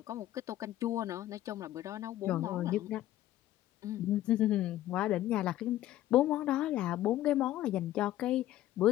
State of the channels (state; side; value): quieter; right; 13.9 dB